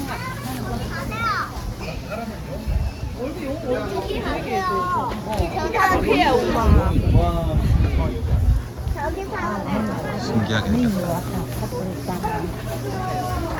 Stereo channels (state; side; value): identical; both; correlation 1.00